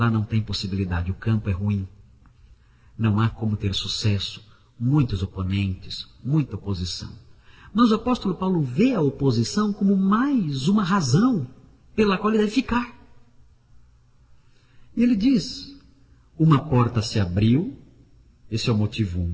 não tem possibilidade, o campo é ruim. Não há como ter sucesso, muitos oponentes, muita oposição. Mas o apóstolo Paulo vê a oposição como mais uma razão pela qual ele deve ficar. E ele diz, uma porta se abriu, esse é o motivo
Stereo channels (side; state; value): both; identical; correlation 1.00